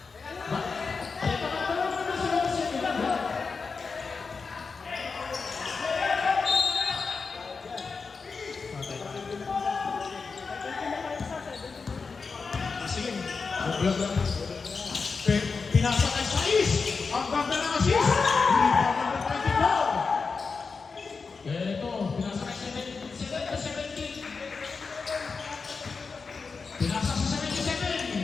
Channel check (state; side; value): quieter; right; 4.8 dB